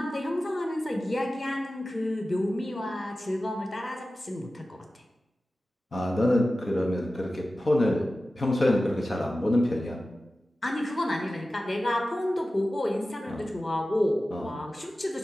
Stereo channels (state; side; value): normal; both; correlation 0.95